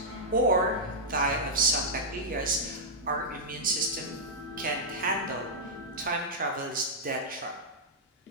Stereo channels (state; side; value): normal; both; correlation -0.08